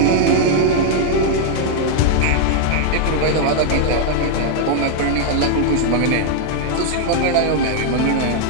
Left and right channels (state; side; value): different; both; correlation 0.00